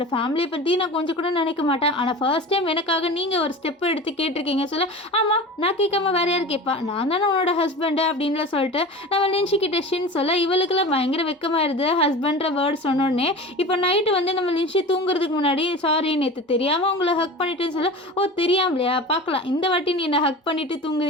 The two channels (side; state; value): both; normal; correlation 0.34